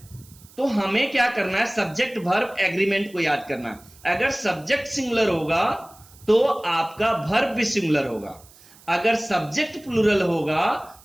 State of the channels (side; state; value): right; noise; hiss, 25 dB below the sound